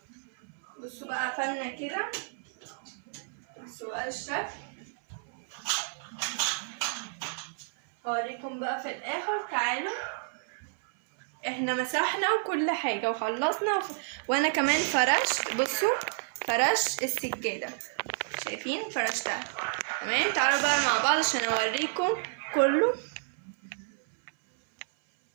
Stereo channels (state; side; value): silent; left; 58 dB below the other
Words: بصوا بقى قفلنا كده. بصوا بقى الشكل. هوريكم بقى في الاخر. تعالوا احنا مسحنا وكل حاجه وخلصنا وانا كمان فرشت. بصوا فرش السجاده، شايفين فرشتها. تمام. تعالوا بقى مع بعض عشان اوريكم كله.